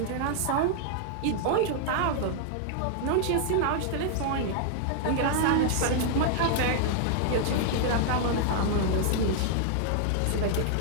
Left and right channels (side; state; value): both; different; correlation -0.01